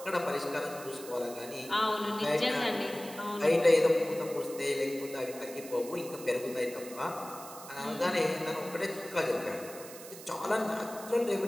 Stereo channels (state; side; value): noise; right; hiss, 15 dB below the sound